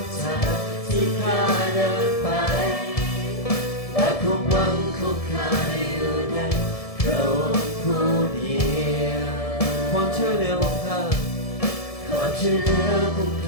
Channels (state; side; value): late; right; 1.7 ms